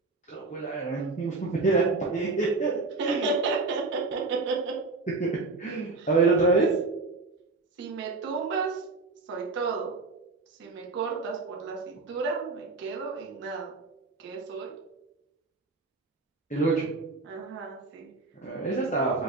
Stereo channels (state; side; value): quieter; left; 3.6 dB